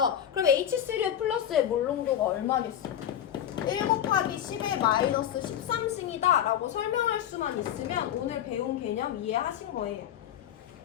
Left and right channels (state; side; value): quieter; right; 10.3 dB